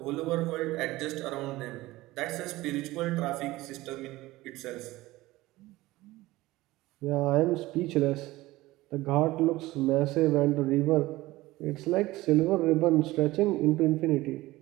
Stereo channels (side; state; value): left; quieter; 18.4 dB